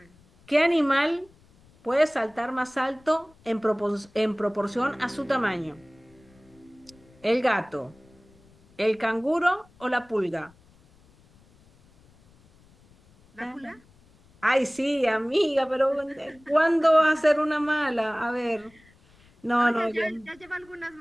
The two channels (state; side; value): noise; left; rumble, 29 dB below the sound